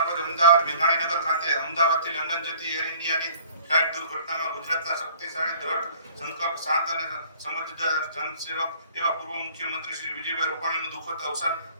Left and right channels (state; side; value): inverted; both; correlation -0.52